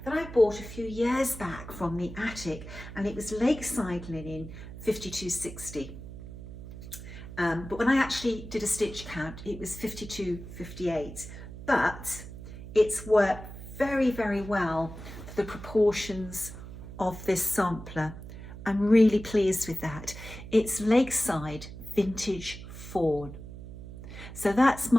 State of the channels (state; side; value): noise; right; hum, 12 dB below the sound